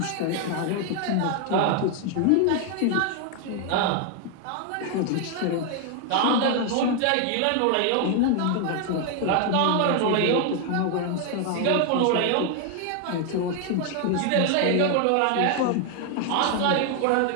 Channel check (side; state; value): both; different; correlation 0.01